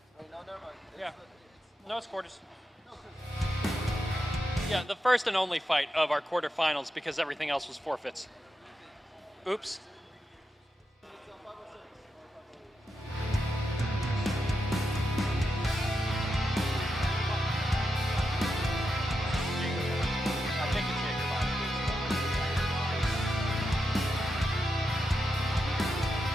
Yeah, no, it's quarters. Yeah, the first and only fight of our quarterfinals because everything else was forfeits. Oops.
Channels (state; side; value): normal; both; correlation 0.86